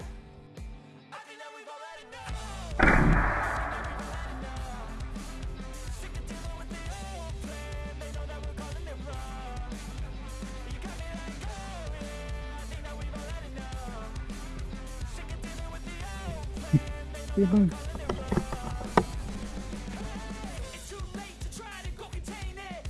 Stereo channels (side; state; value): both; identical; correlation 1.00